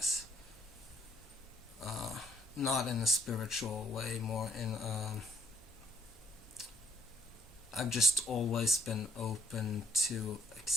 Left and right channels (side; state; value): both; normal; correlation 0.65